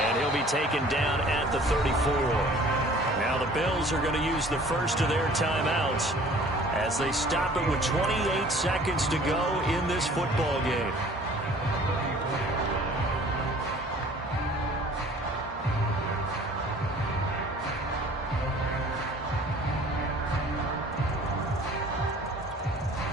he'll be taken down at the 34. Now the Bills are going to use the first of their timeouts as they stop it with 28 seconds to go in this football game.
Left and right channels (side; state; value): both; normal; correlation 0.50